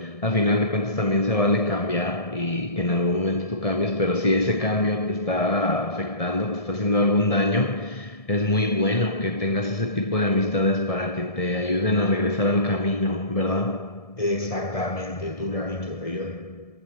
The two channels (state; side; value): late; right; 1.7 ms